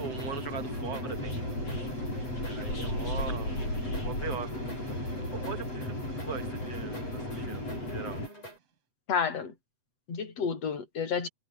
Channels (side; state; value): right; late; 7.9 ms